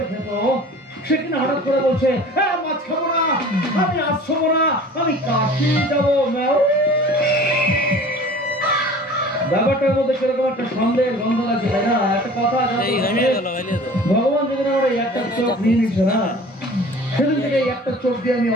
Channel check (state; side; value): normal; both; correlation 0.44